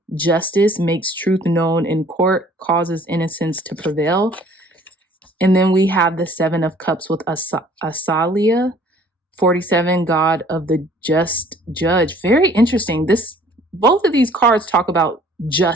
Justice makes truth known in court, causes innocence to prevail. And then we have the Seven of Cups with Asalia, 47, God of the just judge. Very interesting. Both of these cards talk about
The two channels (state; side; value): normal; both; correlation 0.55